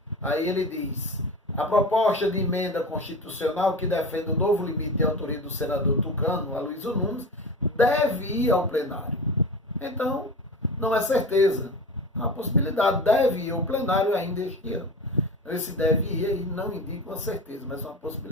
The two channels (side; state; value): both; normal; correlation 0.30